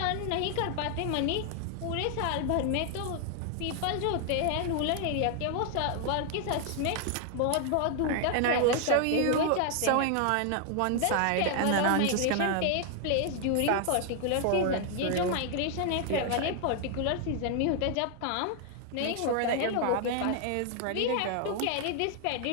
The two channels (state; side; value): different; both; correlation 0.00